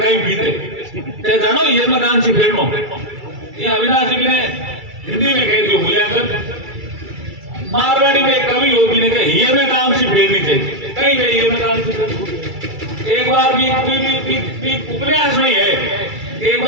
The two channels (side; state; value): left; late; 2.3 ms